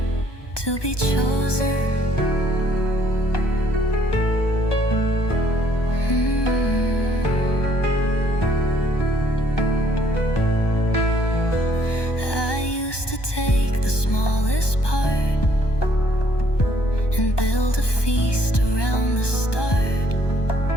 to be chosen. Take the smallest part and build a feast around the stars.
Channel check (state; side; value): late; right; 1.2 ms